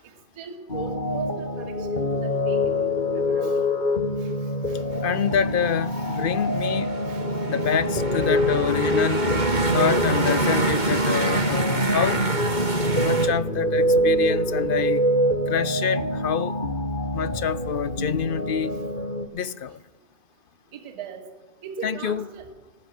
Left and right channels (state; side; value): late; right; 2.2 ms